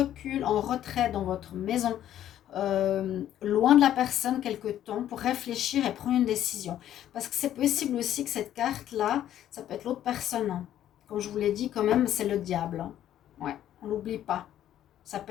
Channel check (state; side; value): quieter; right; 11.6 dB